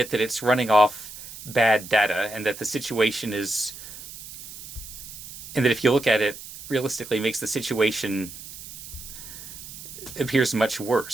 that it's running off bad data, and that the situation is, and that if you look at it realistically, makes the situation appears much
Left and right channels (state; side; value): noise; right; hiss, 13 dB below the sound